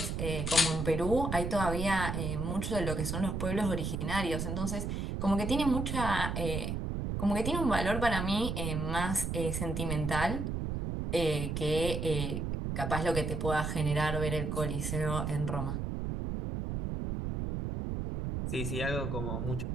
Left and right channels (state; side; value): noise; right; rumble, 2 dB below the sound